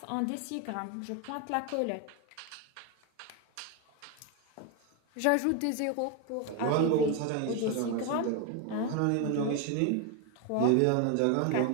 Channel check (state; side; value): different; both; correlation 0.01